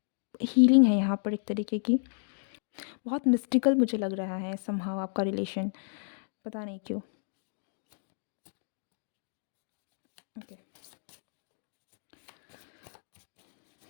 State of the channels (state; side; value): silent; right; digital silence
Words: हीलिंग है यहाँ पर एक तरीके की। बहुत मिस्टिकल मुझे लग रहा है समहाउ आपका रिलेशन, पता नहीं क्यों। Okay,